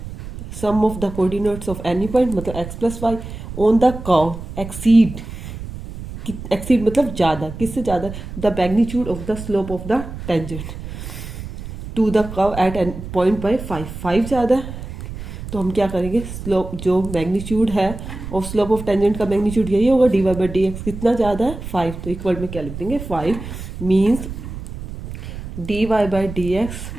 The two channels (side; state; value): right; noise; rumble, 10 dB below the sound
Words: sum of the coordinates of any point मतलब x plus Y, on the curve exceed, exceed मतलब ज़्यादा, किससे ज़्यादा, the magnitude of the slope of the tangent to the curve at an point by 5 ज़्यादा है, तो हम क्या करेंगे, स्लोप जो मैग्नीट्यूड है और स्लोप ऑफ टेंजेंट का मैग्नीट्यूड यही होगा, d Y by D x कितना ज़्यादा है 5, तो इक्वल में क्या लिख देंगे 5, means D Y by D x